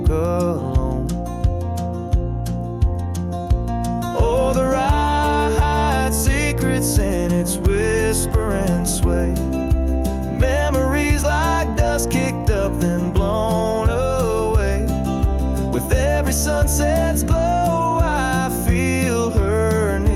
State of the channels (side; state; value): both; identical; correlation 1.00